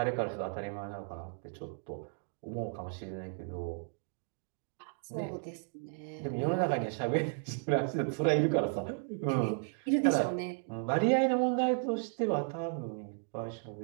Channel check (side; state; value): left; silent; 55 dB below the other